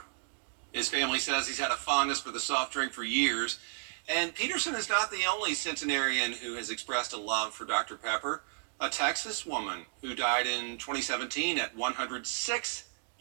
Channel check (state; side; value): silent; left; digital silence